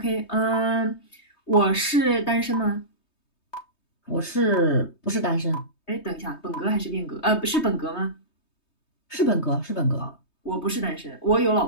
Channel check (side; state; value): right; late; 3.2 ms